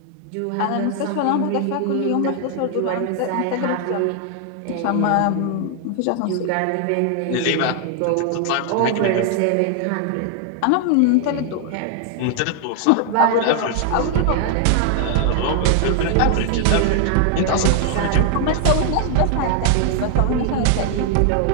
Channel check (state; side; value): different; both; correlation 0.00